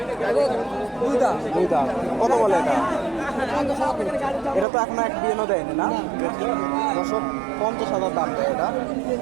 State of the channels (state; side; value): drops out; left; at 4.7 s